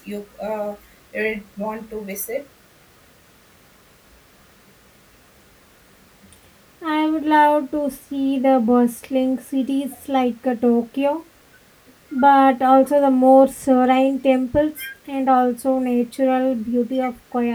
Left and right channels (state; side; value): identical; both; correlation 1.00